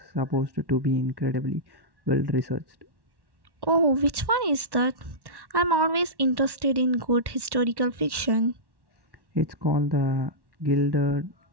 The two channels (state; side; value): late; left; 1.1 ms